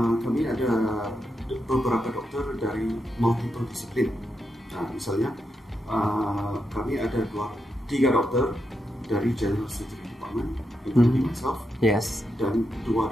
kami ada beberapa dokter dari multiple disiplin. Misalnya kami ada 3 dokter dari general surgery department, including myself, dan 2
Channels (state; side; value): normal; both; correlation 0.85